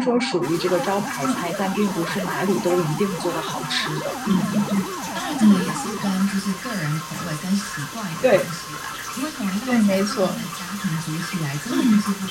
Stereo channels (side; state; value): both; identical; correlation 1.00